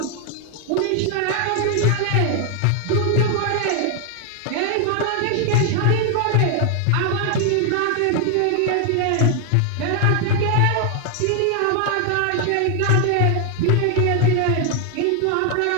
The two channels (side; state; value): both; different; correlation 0.01